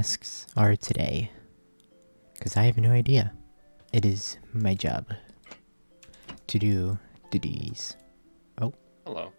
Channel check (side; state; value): both; inverted; correlation -1.00